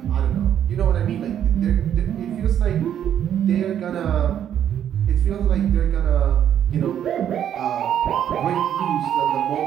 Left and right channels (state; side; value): quieter; left; 9.8 dB